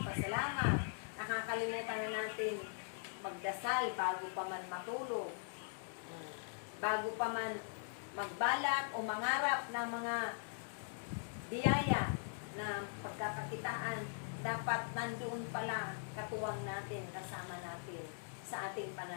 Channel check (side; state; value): right; silent; digital silence